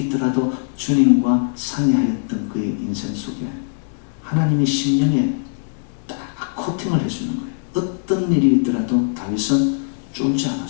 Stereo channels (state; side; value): silent; right; digital silence